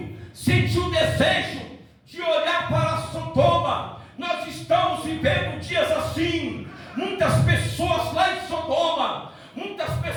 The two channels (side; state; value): both; identical; correlation 1.00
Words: sentiu o desejo de olhar para Sodoma. Nós estamos vivendo dias assim. Muitas pessoas lá em Sodoma, muitas